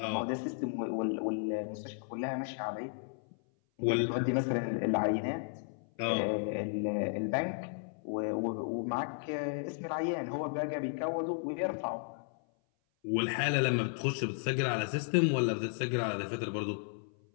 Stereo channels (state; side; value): silent; right; 55 dB below the other